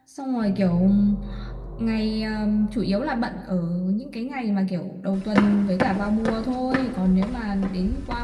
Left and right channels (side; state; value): both; identical; correlation 1.00